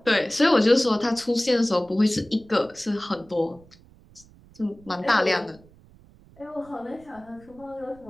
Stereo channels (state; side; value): noise; right; rumble, 26 dB below the sound